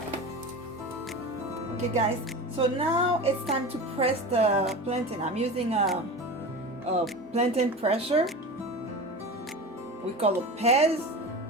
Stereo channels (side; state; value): both; normal; correlation 0.30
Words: Okay guys, so now it's time to press the plantain. I'm using a plantain presser. We call it Peze.